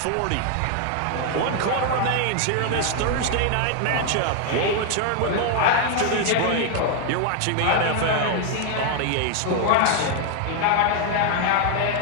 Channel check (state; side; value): different; both; correlation 0.00